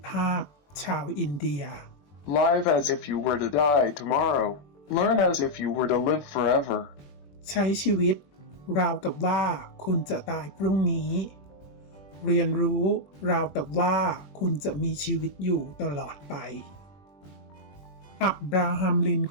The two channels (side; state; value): right; late; 21 ms